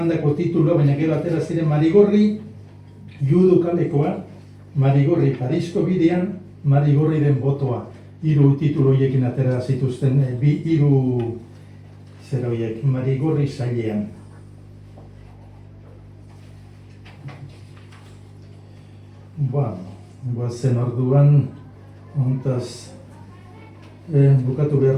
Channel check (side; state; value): both; identical; correlation 1.00